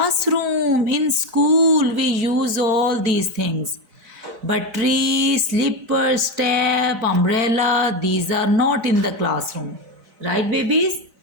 In school, we use all these things. But tree, slipper, step, umbrella, these are not in the classroom. Right, babies?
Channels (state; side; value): late; left; 4.0 ms